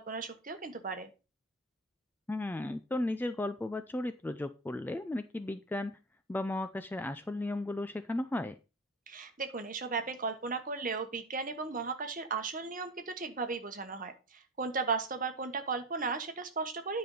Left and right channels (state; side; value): normal; both; correlation 0.31